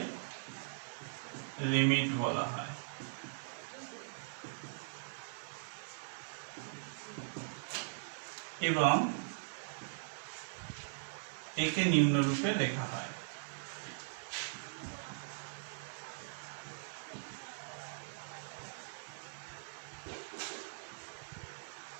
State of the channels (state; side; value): silent; left; digital silence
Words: লিমিট বলা হয়। এবং একে নিম্নরূপে লেখা হয়।